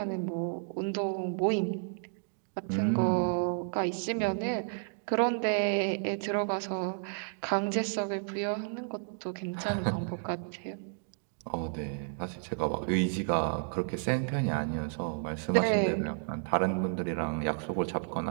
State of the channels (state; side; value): silent; left; digital silence